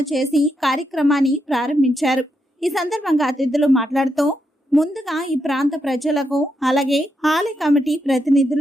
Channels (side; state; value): both; normal; correlation 0.82